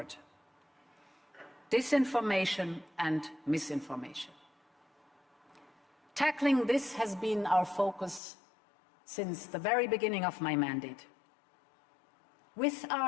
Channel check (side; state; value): right; drops out; at 8.2 s